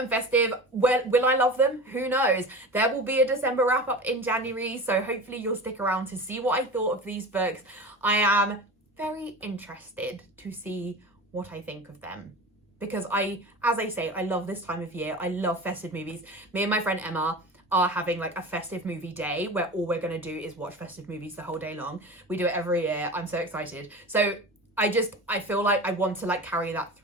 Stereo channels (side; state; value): both; normal; correlation 0.32